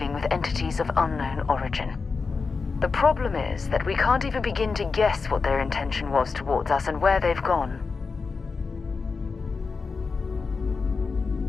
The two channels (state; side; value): quieter; right; 4.7 dB